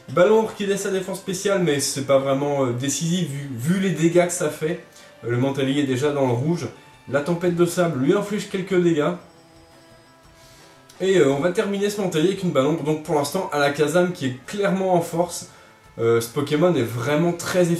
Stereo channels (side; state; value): both; identical; correlation 1.00